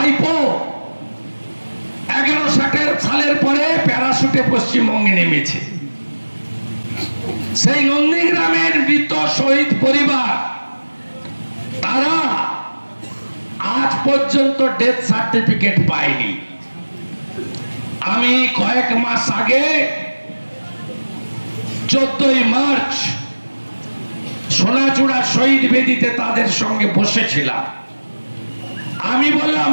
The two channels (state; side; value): inverted; both; correlation -1.00